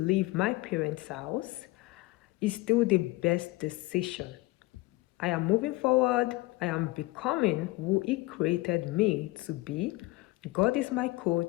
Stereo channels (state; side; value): quieter; right; 21.1 dB